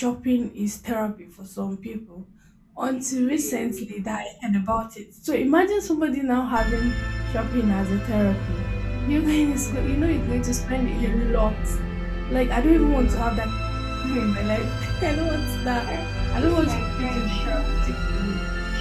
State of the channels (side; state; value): both; identical; correlation 1.00